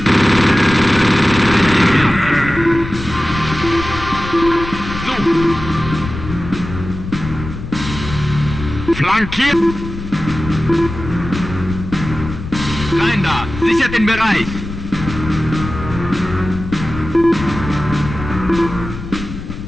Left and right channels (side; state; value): left; noise; rumble, 9 dB below the sound